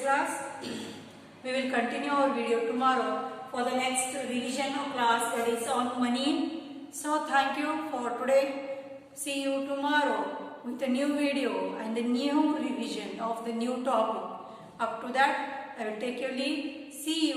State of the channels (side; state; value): both; identical; correlation 1.00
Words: We will continue our video tomorrow for the next revision of class, that is on money. So thank you for today. See you tomorrow with a new video and a new revision of the new topic. Up to that, I will take your leave. See